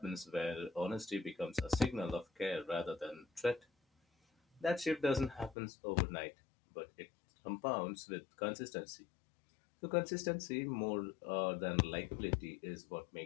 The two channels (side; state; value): right; drops out; at 5.6 s